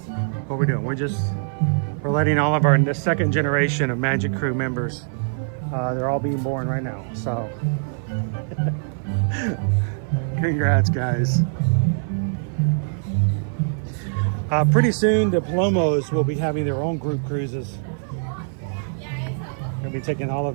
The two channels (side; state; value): left; silent; 57 dB below the other